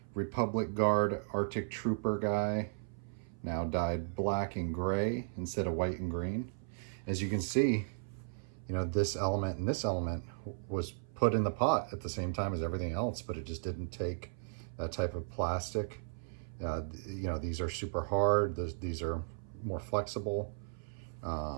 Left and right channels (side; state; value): left; silent; 54 dB below the other